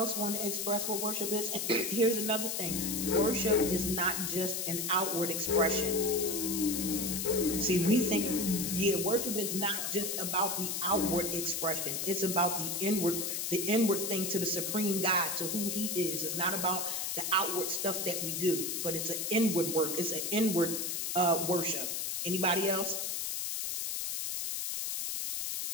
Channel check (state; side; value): noise; left; hiss, 2 dB below the sound